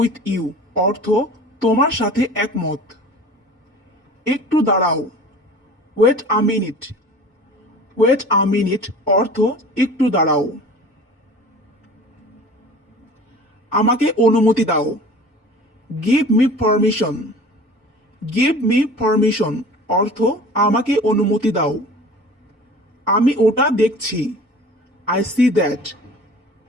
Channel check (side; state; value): both; normal; correlation 0.42